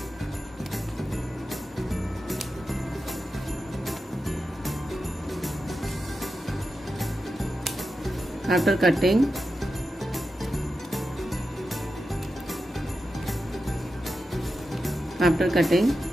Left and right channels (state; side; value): normal; both; correlation 0.90